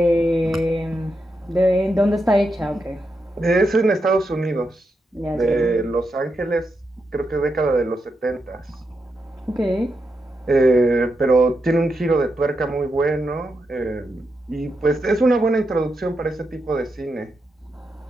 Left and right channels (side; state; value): both; normal; correlation 0.85